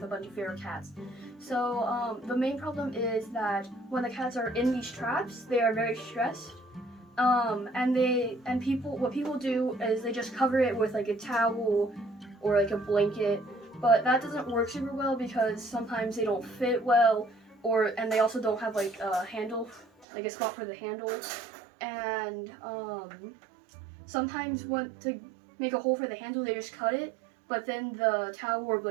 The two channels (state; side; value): drops out; left; at 20.1 s